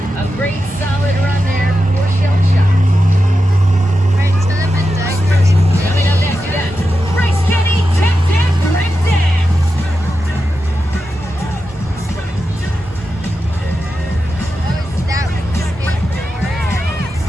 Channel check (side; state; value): both; normal; correlation 0.90